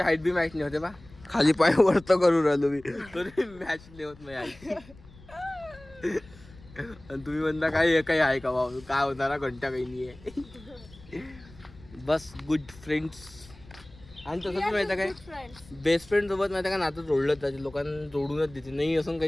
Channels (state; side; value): noise; left; rumble, 22 dB below the sound